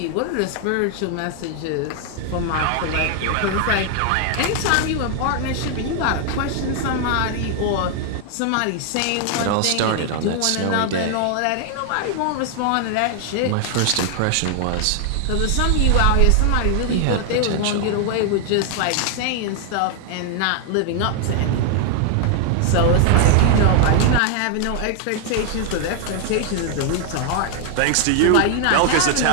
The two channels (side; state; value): both; different; correlation 0.00